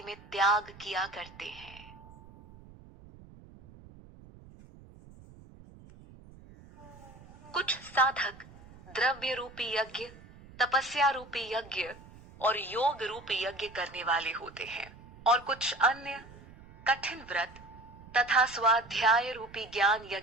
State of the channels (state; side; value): noise; right; rumble, 20 dB below the sound